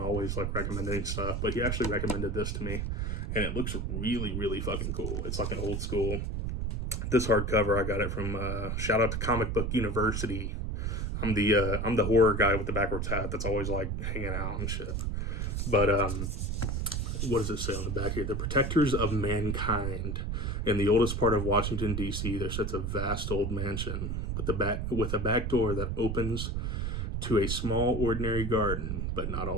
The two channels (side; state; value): right; noise; rumble, 1 dB below the sound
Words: always like recommending stuff. But he actually recommended this to me, and it looks really, really fucking cool. It's like an old school. This hardcover, I got it from shout out to Comic Book University. I'm the horror guy with the backwards hat that's always like hanging out and shit. But what does it say on the back here? The protectors of mankind. In the oldest part of Washington, D.C., there sits a vast old mansion with a back door that opens to a small, ordinary garden, but not